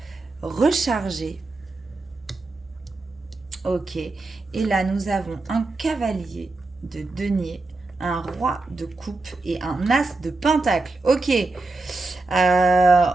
recharger. Ok. Et là, nous avons un cavalier de denier, un roi de coupe et un as de pentacle. Ok.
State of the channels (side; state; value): left; quieter; 3.3 dB